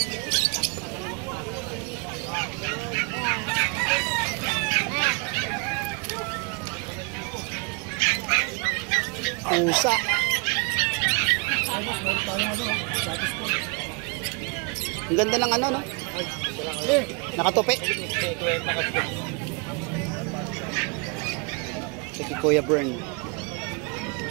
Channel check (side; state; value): left; quieter; 33.7 dB